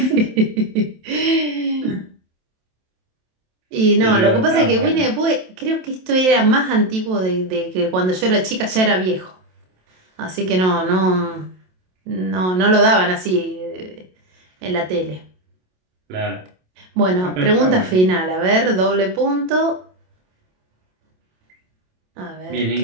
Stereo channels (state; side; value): late; left; 27 ms